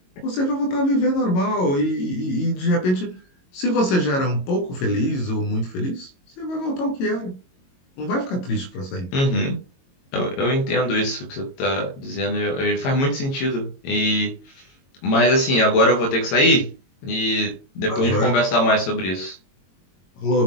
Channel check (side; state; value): right; late; 22 ms